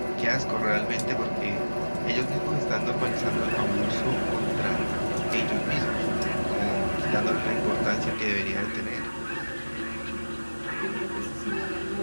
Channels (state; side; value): inverted; both; correlation -1.00